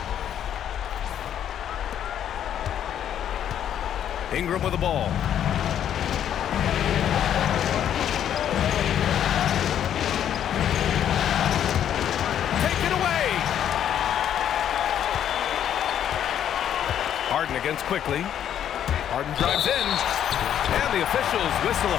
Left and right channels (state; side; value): quieter; right; 10.0 dB